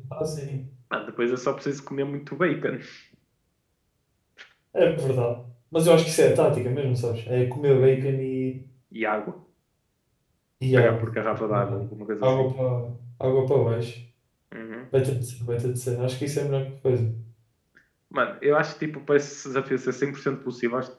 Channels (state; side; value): identical; both; correlation 1.00